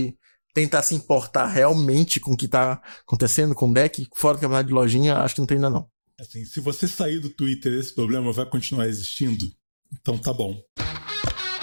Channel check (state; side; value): inverted; both; correlation -1.00